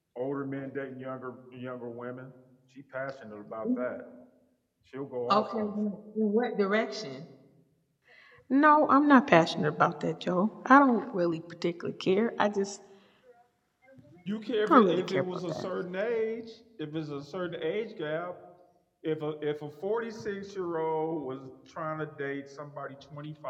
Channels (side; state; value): both; identical; correlation 1.00